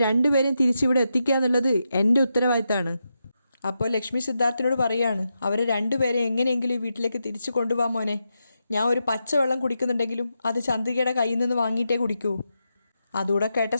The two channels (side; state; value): both; inverted; correlation -0.87